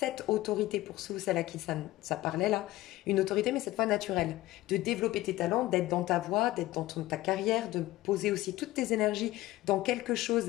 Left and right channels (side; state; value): right; quieter; 17.1 dB